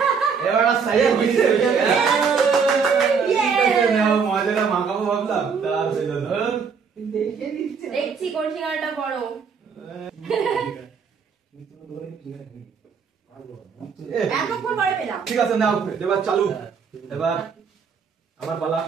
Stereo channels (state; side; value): quieter; left; 5.9 dB